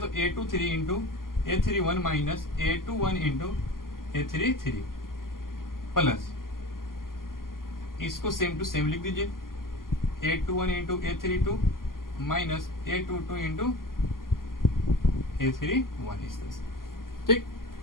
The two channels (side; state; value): right; late; 0.91 ms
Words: A23 into A31 minus A21 into A33 plus, इसको सेम टू सेम लिख दीजिए, A21 into A32 minus A22 into A31, इस तरह से, ठीक।